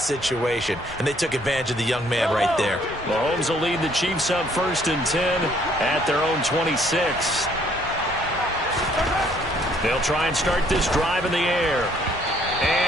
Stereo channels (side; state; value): both; normal; correlation 0.64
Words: situation, and they took advantage of the young man right there. Mahomes will lead the Chiefs up 1st and 10 at their own 26. They'll try and start this drive in the air.